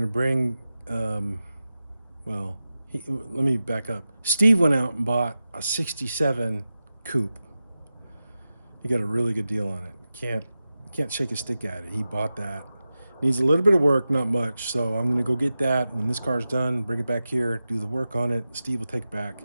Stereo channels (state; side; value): inverted; both; correlation -0.93